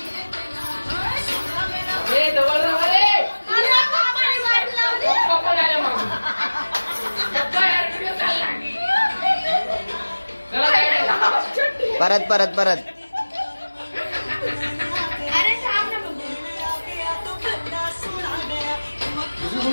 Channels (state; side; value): inverted; both; correlation -1.00